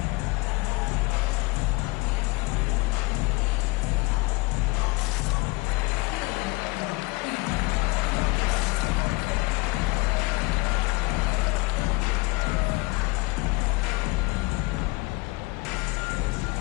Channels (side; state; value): right; quieter; 25.1 dB